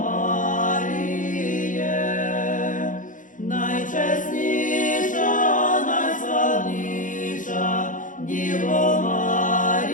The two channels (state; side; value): late; right; 0.38 ms